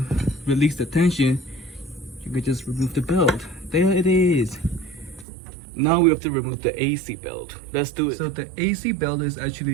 release the tension, you can just remove the belt. There it is. Now we have to remove the AC belt. Let's do it. So the AC belt is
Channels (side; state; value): left; drops out; at 5.2 s